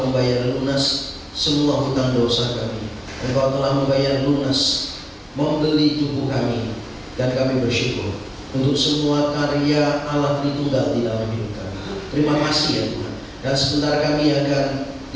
membayar lunas semua hutang dosa kami. Engkau telah membayar lunas, membeli tubuh kami, dan kami bersyukur untuk semua karya Allah Tritunggal di dalam hidup kami. Terima kasih ya Tuhan. Dan sebentar kami akan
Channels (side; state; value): both; identical; correlation 1.00